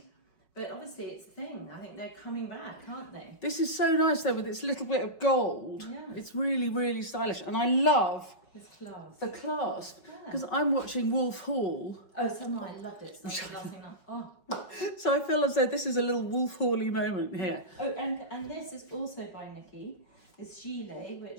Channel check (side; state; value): right; late; 5.4 ms